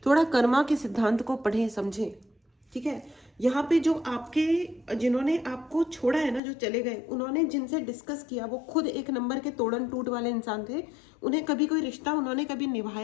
थोड़ा कर्मा के सिद्धांत को पढ़ें समझें, ठीक है। यहाँ पे जो आपके, जिन्होंने आपको छोड़ा है ना, जो चले गए, उन्होंने जिनसे डिस्कस किया वो खुद एक नंबर के तोड़न टूट वाले इंसान थे। उन्हें कभी कोई रिश्ता उन्होंने कभी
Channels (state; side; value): drops out; right; at 6.4 s